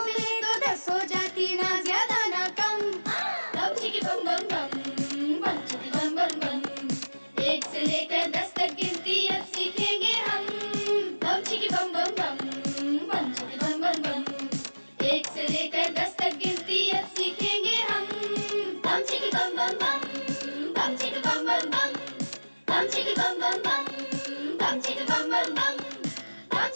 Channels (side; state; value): both; inverted; correlation -1.00